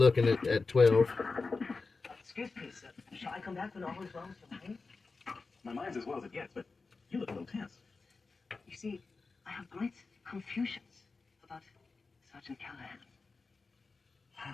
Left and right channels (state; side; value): quieter; right; 4.1 dB